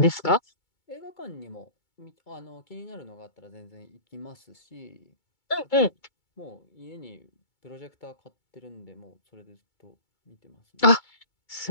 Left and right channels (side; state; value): right; late; 2.2 ms